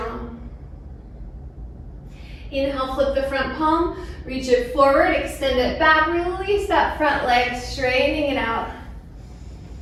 Inhale, flip the front palm, reach it forward, extend it back, release that front leg, straightening it out.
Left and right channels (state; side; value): identical; both; correlation 1.00